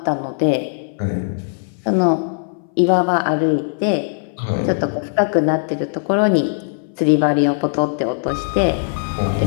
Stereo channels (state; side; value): silent; right; 61 dB below the other